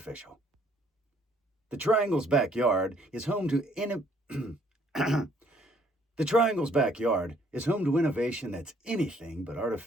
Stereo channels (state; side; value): normal; both; correlation 0.64